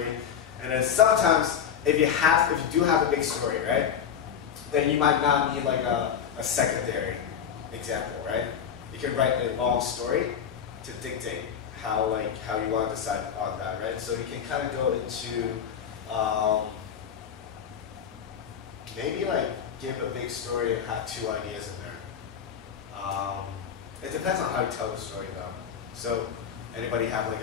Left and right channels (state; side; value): quieter; right; 8.0 dB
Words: And then sometimes, if you do have a big story, right? Then you might not need like a secondary example, right? You can write a long story to dictate how you want to decide on that, right? So you can kind of go into maybe like give a big story and have two ideas in there. It depends on how you tell the story though. So anybody have like